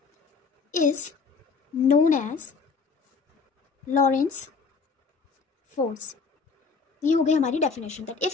is known as Lorentz force. ये हो गई हमारी definition that if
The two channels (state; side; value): quieter; right; 5.0 dB